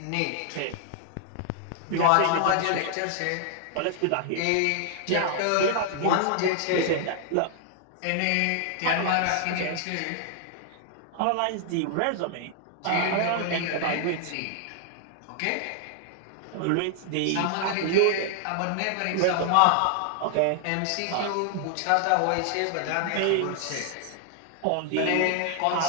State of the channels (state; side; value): different; both; correlation 0.00